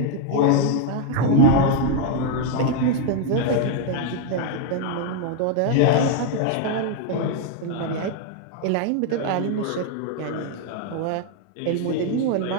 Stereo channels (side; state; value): both; different; correlation 0.00